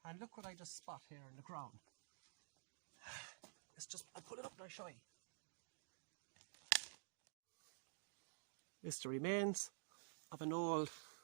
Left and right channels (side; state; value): left; silent; digital silence